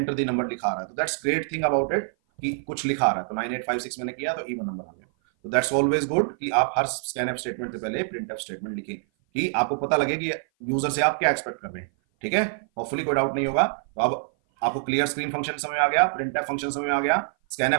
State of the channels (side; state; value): left; silent; 56 dB below the other